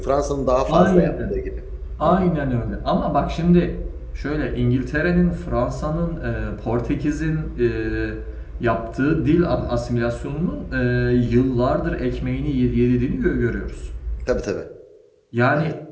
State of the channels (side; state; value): both; identical; correlation 1.00